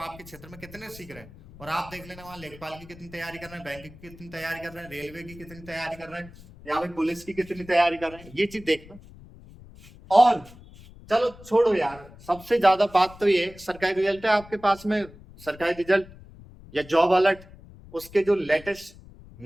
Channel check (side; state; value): left; noise; rumble, 20 dB below the sound